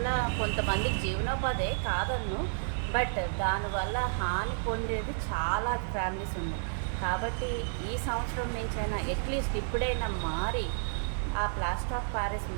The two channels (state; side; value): silent; left; digital silence